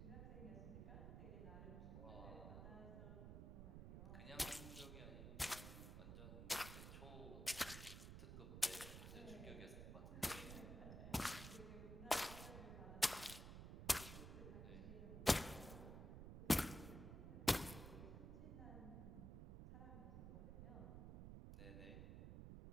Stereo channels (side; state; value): right; noise; rumble, 8 dB below the sound